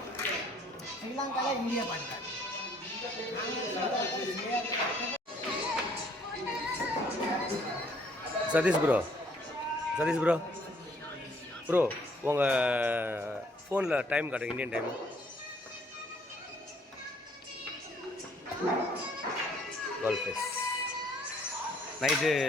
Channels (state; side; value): normal; both; correlation 0.63